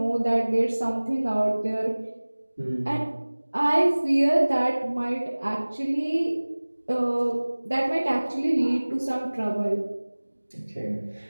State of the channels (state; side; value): inverted; both; correlation -1.00